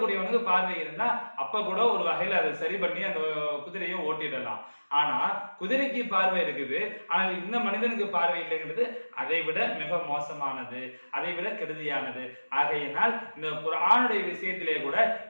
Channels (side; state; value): both; inverted; correlation -1.00